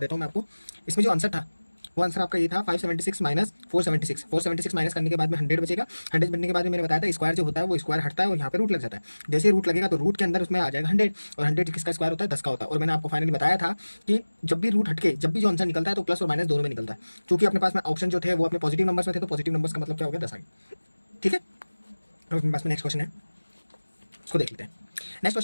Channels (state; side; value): inverted; both; correlation -1.00